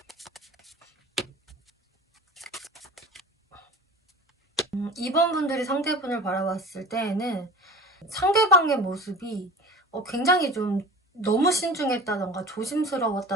2번 분들이 상대분을 바라봤을 때에는 상대방의 모습이 굉장히 좀 너무 신중했다던가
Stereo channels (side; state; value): both; normal; correlation 0.37